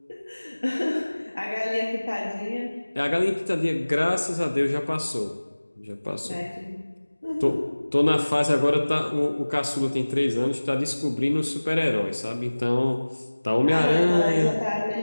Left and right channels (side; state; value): both; inverted; correlation -1.00